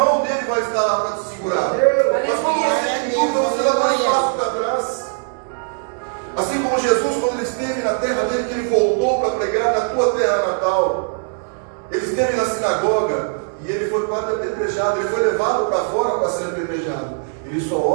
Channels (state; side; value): silent; left; digital silence